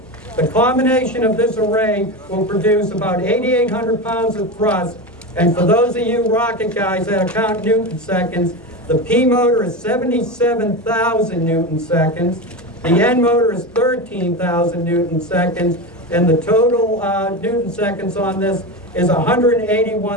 The combination of this array will produce about 8,800 pounds of thrust. And for those of you rocket guys that count Newton seconds, the P motor is 77,000 Newton seconds. The N motor is 13,000 Newton seconds. And the total Newton seconds on this is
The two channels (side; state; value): both; normal; correlation 0.21